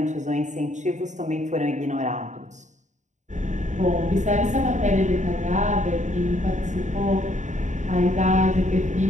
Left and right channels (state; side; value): late; left; 0.35 ms